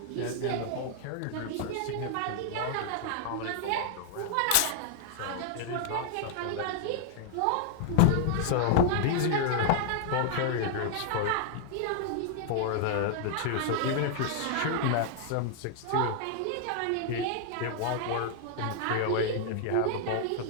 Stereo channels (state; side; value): different; both; correlation 0.00